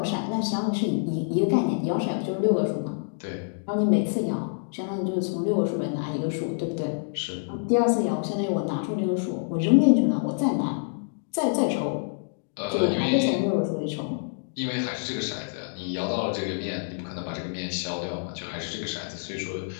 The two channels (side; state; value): right; silent; digital silence